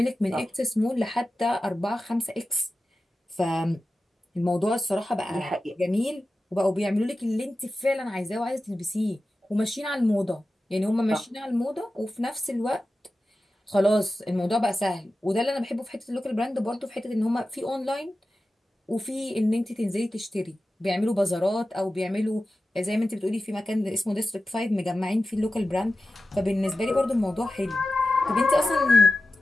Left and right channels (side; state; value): both; normal; correlation 0.94